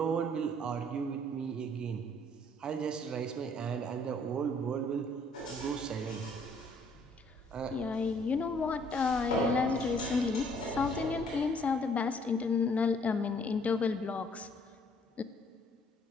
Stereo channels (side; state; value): both; normal; correlation 0.62